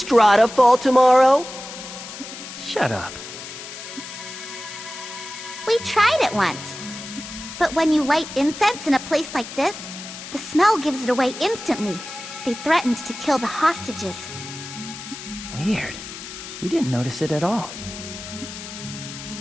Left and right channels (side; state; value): left; noise; hiss, 11 dB below the sound